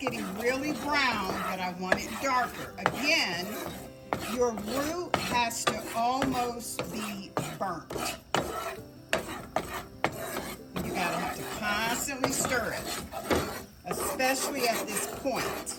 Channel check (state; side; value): identical; both; correlation 1.00